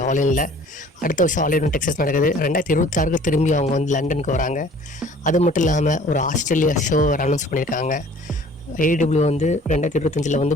ஆன்லைனில்? அடுத்த வருஷம் ஆன்லைன் டெக்ஸஸ் நடக்குது. 2026 திரும்பி அவங்க வந்து லண்டனுக்கு வராங்க. அது மட்டும் இல்லாமல் ஒரு ஆஸ்திரேலியா ஷோ அனௌன்ஸ் பண்ணியிருக்காங்க. ஏடபிள்யூ வந்து 2025 வந்து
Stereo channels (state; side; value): normal; both; correlation 0.51